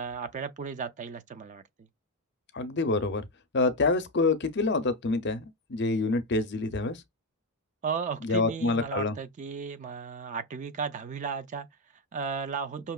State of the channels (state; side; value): normal; both; correlation 0.07